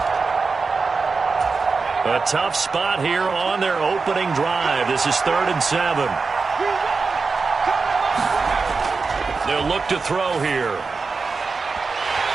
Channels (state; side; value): quieter; left; 4.5 dB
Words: A tough spot here on their opening drive. This is 3rd and 7. They'll look to throw here.